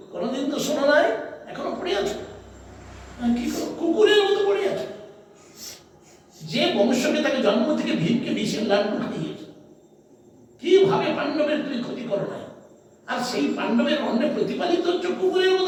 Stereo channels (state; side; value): identical; both; correlation 1.00